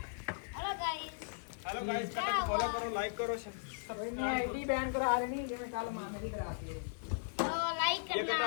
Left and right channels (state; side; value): silent; right; 53 dB below the other